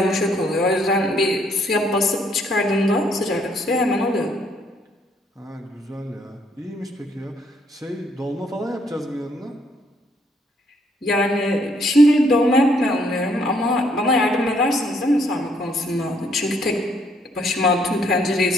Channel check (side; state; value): both; normal; correlation 0.68